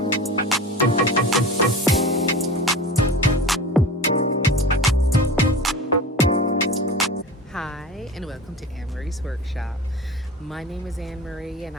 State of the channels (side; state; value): both; normal; correlation 0.34